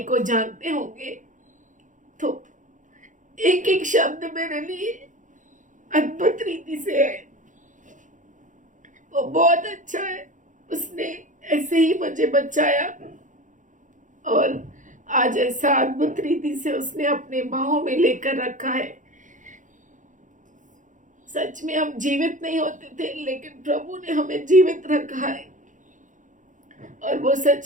को जानते होंगे तो एक एक शब्द मेरे लिए अद्भुत रीति से है। वो बहुत अच्छा है, उसने ऐसे ही मुझे बचाया और आज ऐसा अद्भुत रीति से उसने अपने बाहों में लेकर रखा है। सच में हम जीवित नहीं होते थे, लेकिन प्रभु ने हमें जीवित रखा है और वो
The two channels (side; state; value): left; late; 0.37 ms